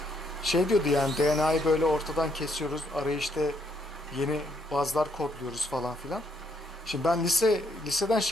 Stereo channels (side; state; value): both; normal; correlation 0.71